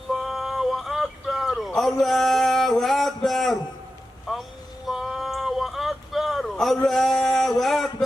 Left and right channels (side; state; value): both; normal; correlation 0.92